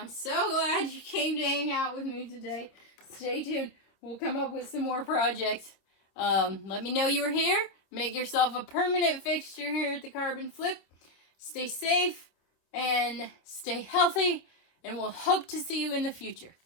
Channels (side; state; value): right; late; 27 ms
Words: so glad you came to hang out with me today. Stay tuned. We'll come up with some more projects. Let me know you were here. Make yourself a permanent fixture here at the Carbon Flip. Stay safe and stay healthy, and we'll hope to see you in the future.